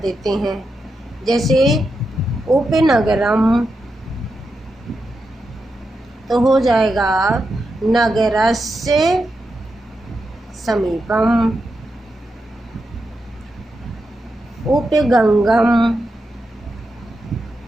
हैं। जैसे उपनगरम तो हो जाएगा नगरस्य समीपम। उपगंगम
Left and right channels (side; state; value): both; normal; correlation 0.87